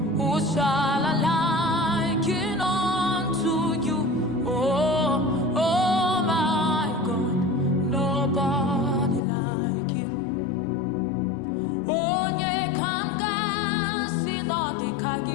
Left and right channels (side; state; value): right; drops out; at 9.2 s